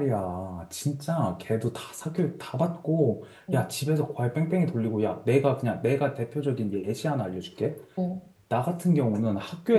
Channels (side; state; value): both; identical; correlation 1.00